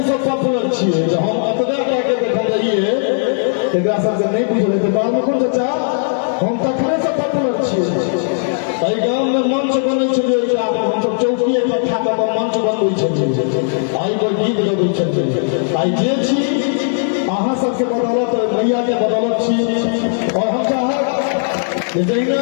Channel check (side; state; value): right; silent; digital silence